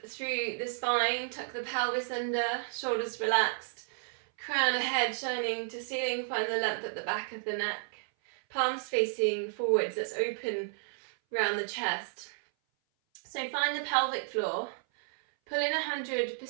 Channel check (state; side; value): silent; left; 56 dB below the other